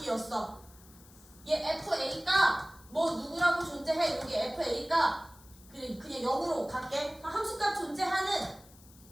얘 fa가 뭐 누구라고 존재해. 여기 fa가 그냥 0으로 갈게. 함수값 존재하는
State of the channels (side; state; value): left; noise; hiss, 24 dB below the sound